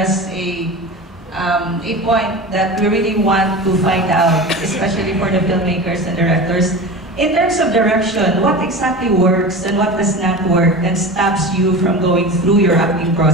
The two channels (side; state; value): both; normal; correlation 0.30